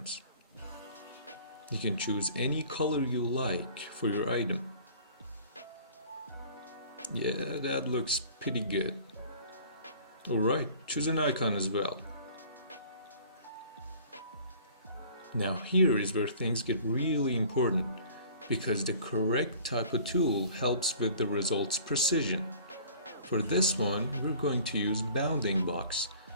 You can choose any color you like for your item. Yeah, that looks pretty good. Alright, choose an icon as well. Now here is where things get really important, because the correct type of tool helps with the result's precision. For this one, we're going to use bounding box,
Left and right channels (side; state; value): both; inverted; correlation -0.49